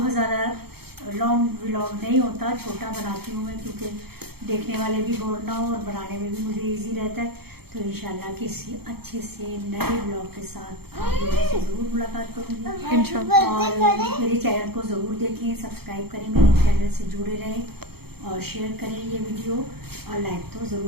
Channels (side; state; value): left; late; 0.96 ms